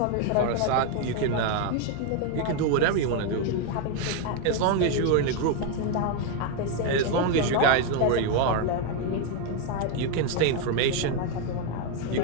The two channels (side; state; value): both; different; correlation 0.01